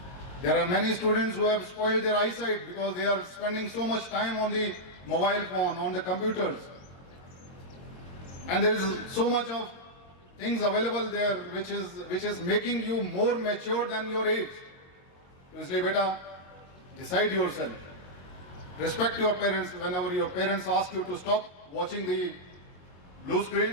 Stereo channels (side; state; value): right; late; 22 ms